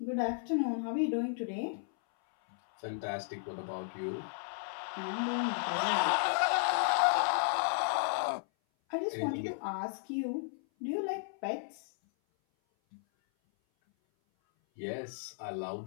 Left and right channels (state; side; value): silent; right; 55 dB below the other